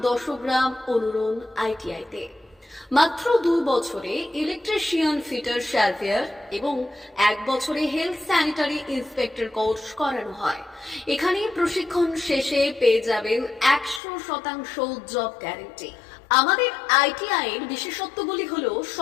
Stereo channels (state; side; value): drops out; right; at 14.0 s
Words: 10 গ্রাম অনুরণ ITI-তে। মাত্র 2 বছরে ইলেকট্রিশিয়ান, ফিটার, সার্ভেয়ার এবং 1 বছরে হেলথ স্যানিটারি ইন্সপেক্টর কোর্স করানো হয়। এখানে প্রশিক্ষণ শেষে পেয়ে যাবেন 100% জব গ্যারান্টি। আমাদের ITI এর বিশেষত্বগুলি হলো